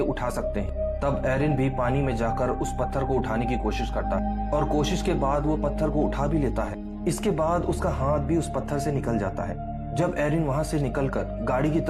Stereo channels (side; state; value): both; identical; correlation 1.00